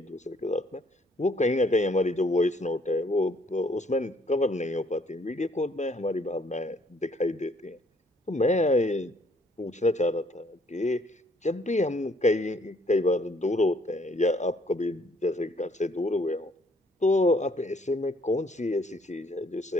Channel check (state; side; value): normal; both; correlation 0.64